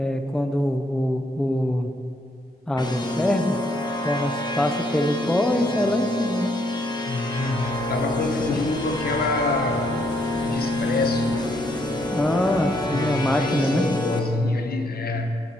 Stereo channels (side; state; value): both; normal; correlation 0.72